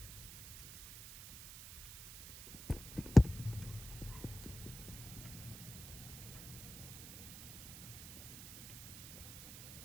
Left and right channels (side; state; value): right; noise; hiss, 12 dB below the sound